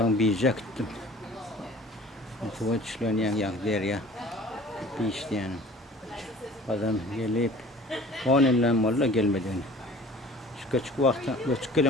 Biyic'e gittim. Tuva çişlerini yani der ya. Biyic'ti yani. Adam gelip 10 yıldan valla gelmedi. Şu küçük vakti, küçük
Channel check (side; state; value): both; normal; correlation 0.46